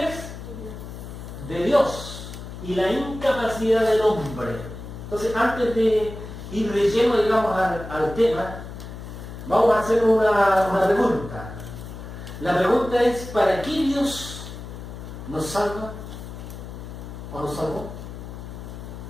es? De Dios, y la incapacidad del hombre. Entonces, antes de ir de lleno, digamos, al tema, vamos a hacer una pregunta. La pregunta es, ¿para qué Dios nos salva o nos salvó?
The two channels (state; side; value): noise; left; hum, 11 dB below the sound